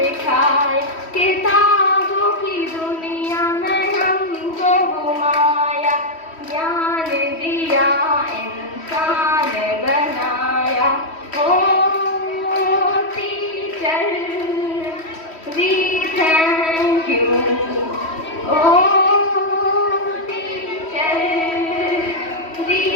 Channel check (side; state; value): right; late; 3.1 ms